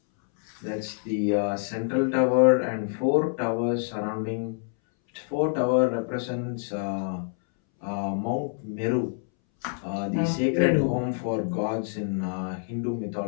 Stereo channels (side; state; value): right; silent; 60 dB below the other